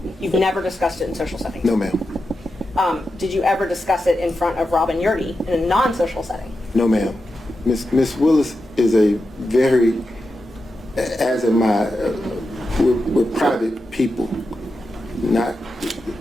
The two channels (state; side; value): normal; both; correlation 0.89